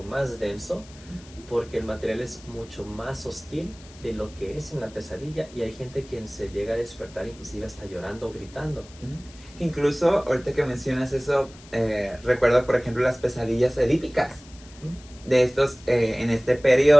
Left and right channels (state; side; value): noise; left; hiss, 22 dB below the sound